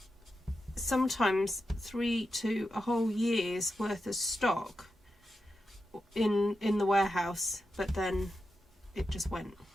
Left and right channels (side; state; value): both; normal; correlation 0.89